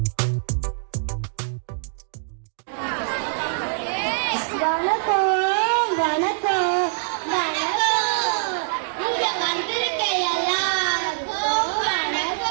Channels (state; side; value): silent; left; digital silence